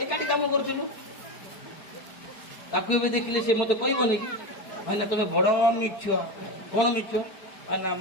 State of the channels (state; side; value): late; right; 4.5 ms